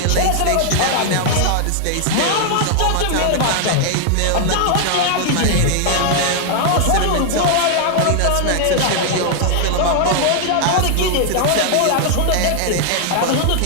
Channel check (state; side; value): different; both; correlation 0.00